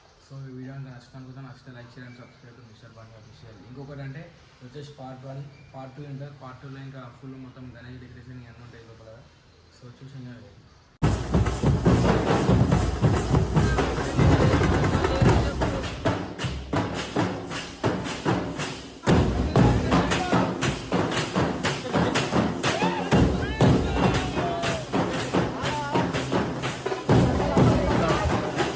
సో ఈ వీడియో అంతా నచ్చితే నచ్చితే లైక్ చేయండి, సబ్స్క్రైబ్ మిస్టర్ బండి అఫీషియల్. ఇంకొకటి అంటే వచ్చేసి పార్ట్ 1 పార్ట్ 2 ఉంటారు. పార్ట్ 2లో ఇంకా ఫుల్ మొత్తం గణేష్ డెకరేషన్ ఇవన్నీ ఉంటాయి లోపల. సో చూసి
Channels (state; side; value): identical; both; correlation 1.00